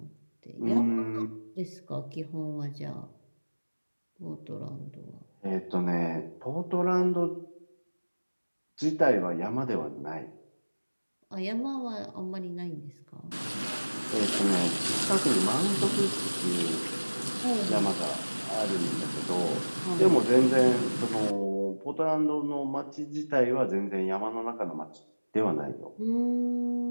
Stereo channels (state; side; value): inverted; both; correlation -1.00